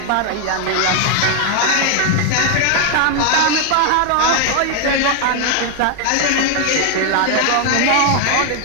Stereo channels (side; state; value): both; different; correlation 0.00